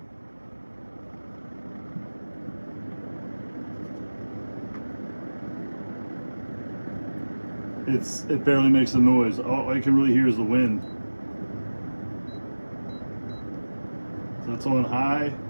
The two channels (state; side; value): inverted; both; correlation -1.00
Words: It barely makes a noise. All you can really hear is the wind. So it's on high.